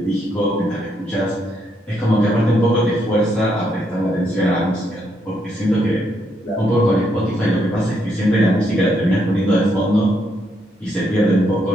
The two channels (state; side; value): normal; both; correlation 0.76